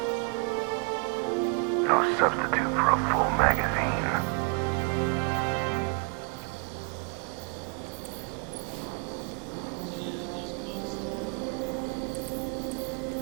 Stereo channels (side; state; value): left; quieter; 33.5 dB